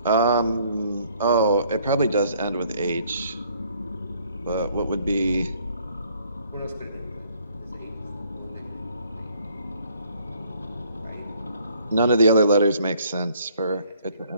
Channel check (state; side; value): inverted; both; correlation -0.62